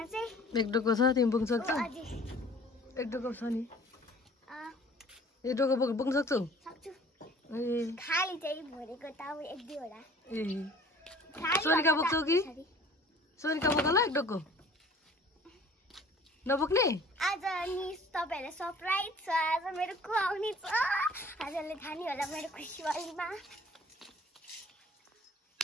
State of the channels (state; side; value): normal; both; correlation 0.50